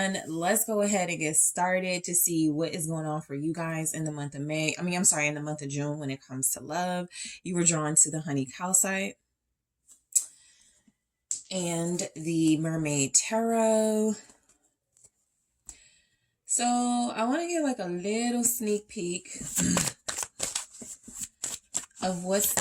let's go ahead and get started to see what is going on for you guys in the month of May. In the month of June when it comes to love. You were drawn to the Honey Calcite and the Mermaid Tarot. So I want to get a little sneak peek of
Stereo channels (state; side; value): identical; both; correlation 1.00